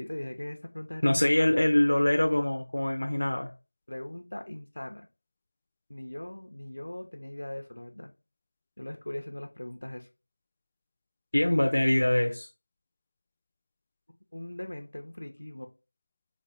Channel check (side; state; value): both; inverted; correlation -1.00